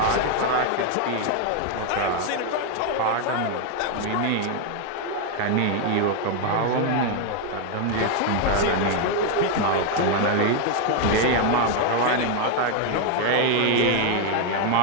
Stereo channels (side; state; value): both; different; correlation 0.01